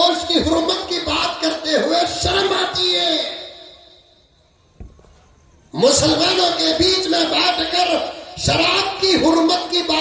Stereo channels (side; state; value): both; identical; correlation 1.00